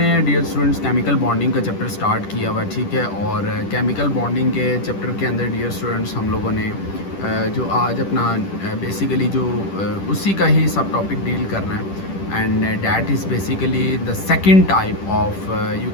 डियर स्टूडेंट्स केमिकल बॉन्डिंग का चैप्टर स्टार्ट किया हुआ, ठीक है। और केमिकल बॉन्डिंग के चैप्टर के अंदर डियर स्टूडेंट्स हम लोगों ने जो आज अपना बेसिकली जो उसी का ही सब टॉपिक डील करना है। And that is basically the second type of you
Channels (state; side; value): late; right; 10 ms